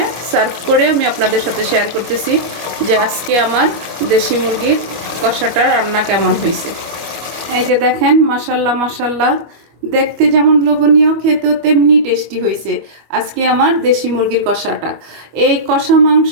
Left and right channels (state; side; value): late; left; 25 ms